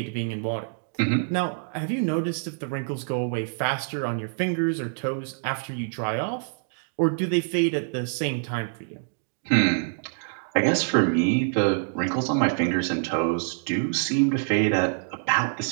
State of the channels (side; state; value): left; silent; digital silence